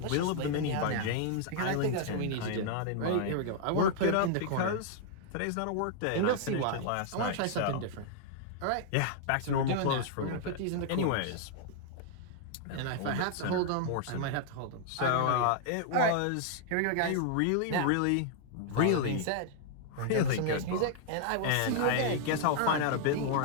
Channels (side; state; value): both; different; correlation -0.01